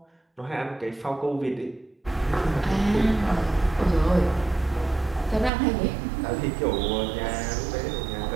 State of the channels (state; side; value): drops out; left; at 5.5 s